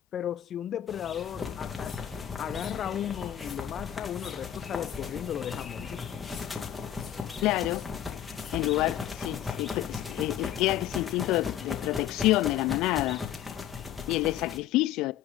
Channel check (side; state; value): right; quieter; 11.4 dB